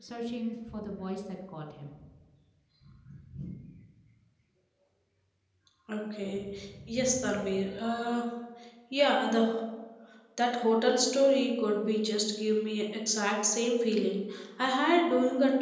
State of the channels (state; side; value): identical; both; correlation 1.00